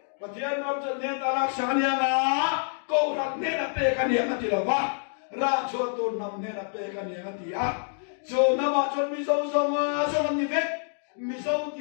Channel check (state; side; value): silent; right; 60 dB below the other